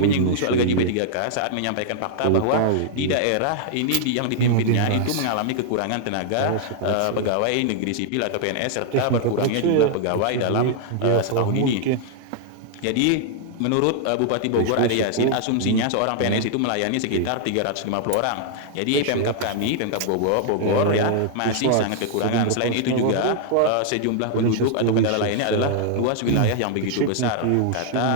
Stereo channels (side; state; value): both; different; correlation -0.01